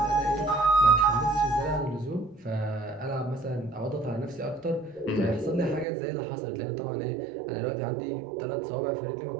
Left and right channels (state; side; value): drops out; left; at 5.9 s